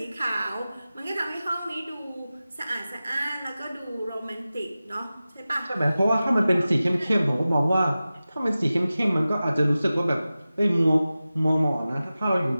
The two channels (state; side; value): inverted; both; correlation -0.95